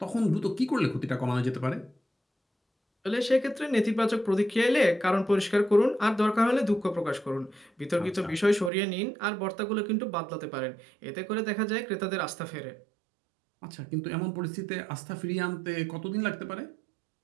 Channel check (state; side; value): drops out; left; at 8.7 s